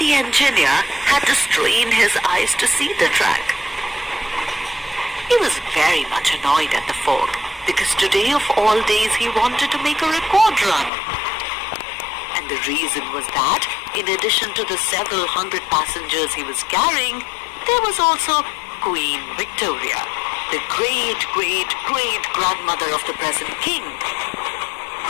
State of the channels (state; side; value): drops out; right; at 10.9 s